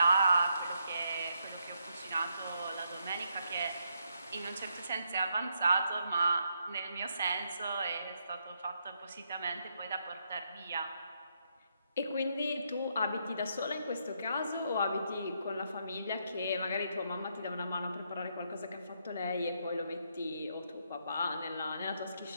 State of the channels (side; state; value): both; inverted; correlation -0.78